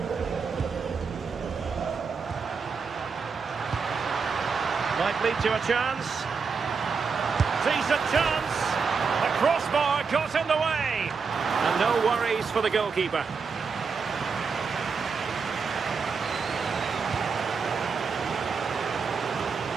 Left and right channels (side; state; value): left; quieter; 5.3 dB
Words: Might lead to a chance. Decent chance. The crossbar got in the way. And no worries for the goalkeeper.